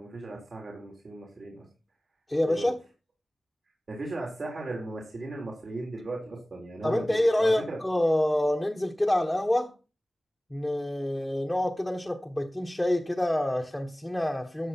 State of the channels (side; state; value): both; normal; correlation 0.98